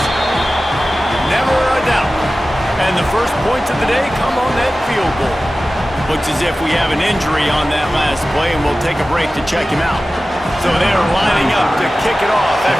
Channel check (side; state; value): both; normal; correlation 0.96